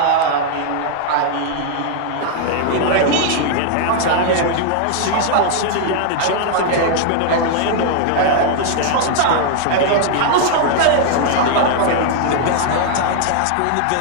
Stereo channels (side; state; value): both; different; correlation -0.01